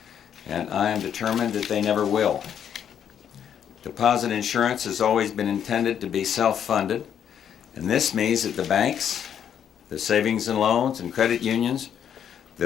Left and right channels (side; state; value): right; quieter; 8.9 dB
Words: and I am determined that they never will. Deposit insurance has always been intended to be self-funded, and this means that the banks, the savings and loans, and credit unions